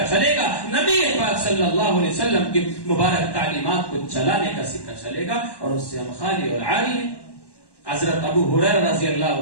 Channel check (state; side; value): late; right; 1.1 ms